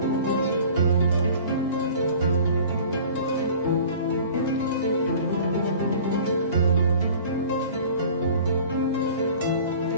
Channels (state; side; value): inverted; both; correlation -0.45